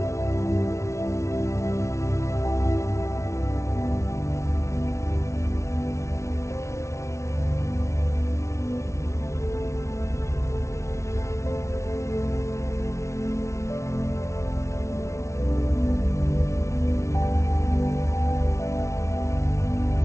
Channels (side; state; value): right; late; 0.14 ms